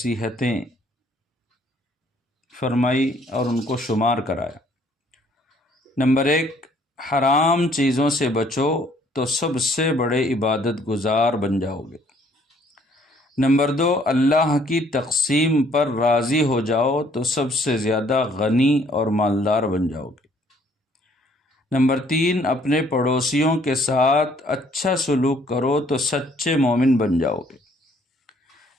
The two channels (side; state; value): both; normal; correlation 0.62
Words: فرمائی اور ان کو شمار کرایا۔ نمبر 1، حرام چیزوں سے بچو تو سب سے بڑے عبادت گزار بن جاؤ گے۔ نمبر 2، اللہ کی تقسیم پر راضی ہو جاؤ تو سب سے زیادہ غنی اور مالدار بن جاؤ گے۔ نمبر 3، اپنے پڑوسیوں کے ساتھ اچھا سلوک کرو تو سچے مومن بن جاؤ گے۔